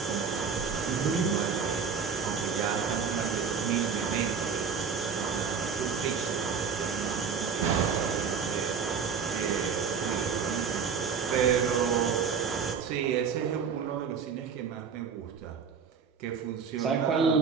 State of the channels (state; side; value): quieter; left; 6.2 dB